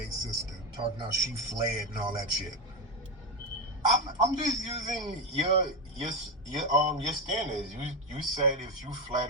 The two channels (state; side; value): normal; both; correlation 0.11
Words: sister? Talking about she fled and all that shit. I'm just using your standards. You said if you